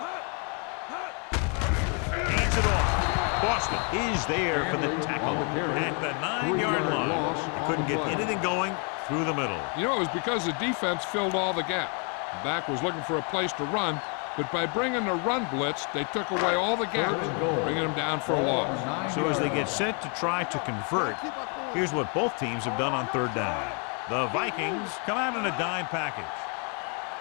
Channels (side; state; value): right; quieter; 37.9 dB